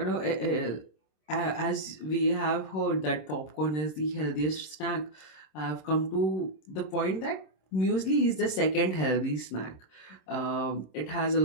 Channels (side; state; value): right; late; 26 ms